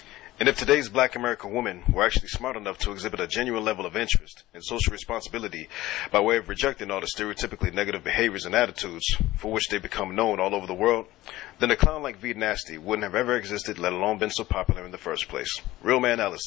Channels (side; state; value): right; quieter; 16.9 dB